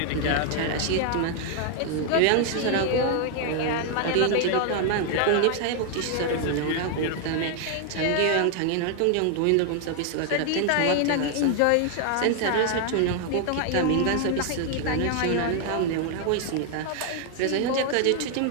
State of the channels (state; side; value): different; both; correlation 0.00